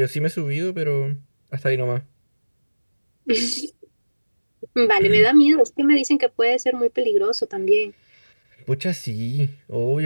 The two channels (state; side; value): inverted; both; correlation -1.00